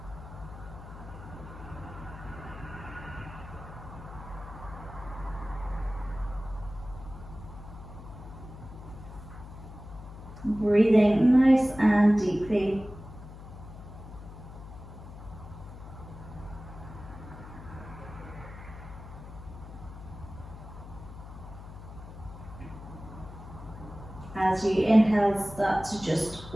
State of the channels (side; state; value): left; noise; hum, 14 dB below the sound